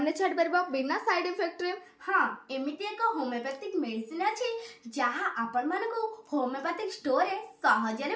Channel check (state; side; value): identical; both; correlation 1.00